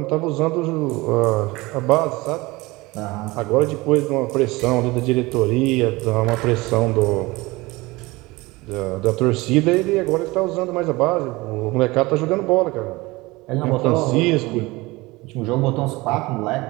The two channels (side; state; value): left; quieter; 22.0 dB